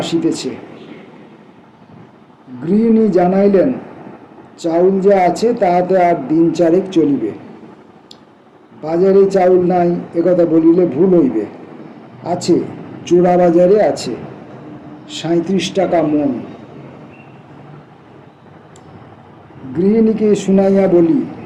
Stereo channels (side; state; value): both; identical; correlation 1.00